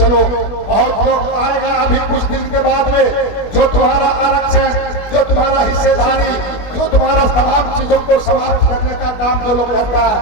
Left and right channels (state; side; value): late; right; 21 ms